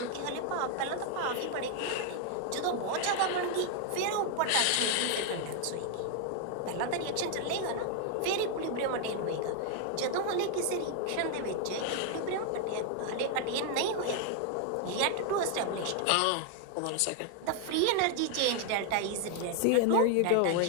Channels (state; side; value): different; both; correlation 0.00